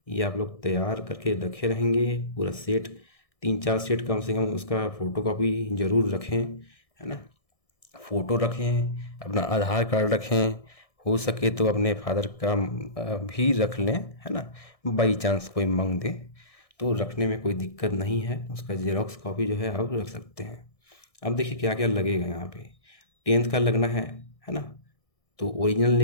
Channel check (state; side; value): late; right; 1.6 ms